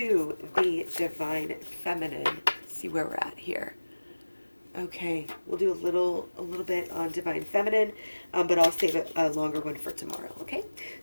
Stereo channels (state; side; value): inverted; both; correlation -1.00